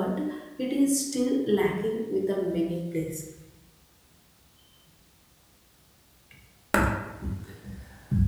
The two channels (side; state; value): both; identical; correlation 1.00